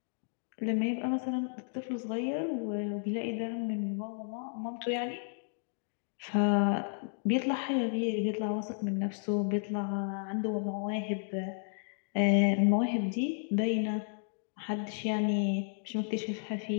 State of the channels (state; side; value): silent; right; digital silence